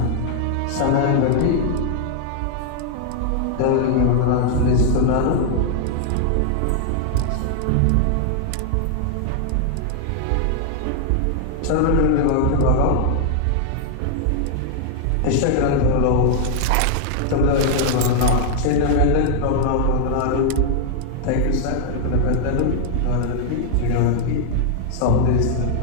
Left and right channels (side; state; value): both; different; correlation 0.00